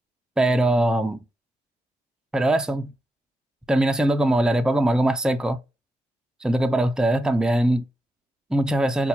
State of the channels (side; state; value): both; normal; correlation 0.87